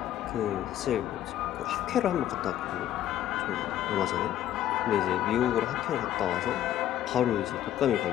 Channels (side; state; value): right; quieter; 12.1 dB